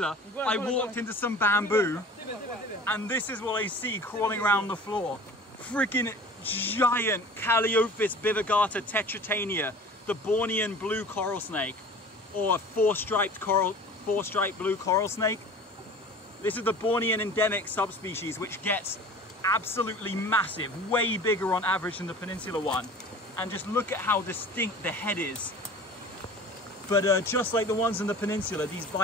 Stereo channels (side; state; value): both; normal; correlation 0.42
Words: I walked into some bamboo, and this is what I see crawling around the floor. Freaking giant Calliophis bivigata tetratania, the Bornean blue coral snake, or four-striped blue coral snake. This is the Bornean endemic subspecies, which gets absolutely massive, way bigger on average than the peninsula one. And just look at how distinct the head is. But just like the ones in the peninsula, these